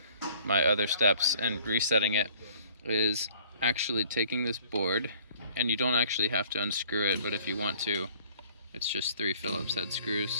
my other steps and resetting it is actually taking this board, and you don't actually have to unscrew it, but if you want to, it's just 3 Phillips head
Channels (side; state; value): both; inverted; correlation -0.55